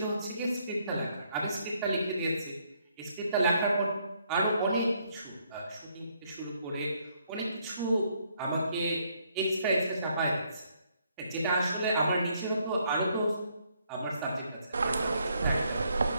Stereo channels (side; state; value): both; inverted; correlation -0.71